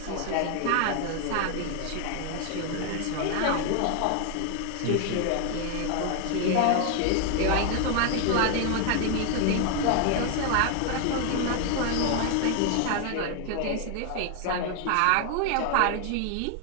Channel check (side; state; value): both; different; correlation 0.00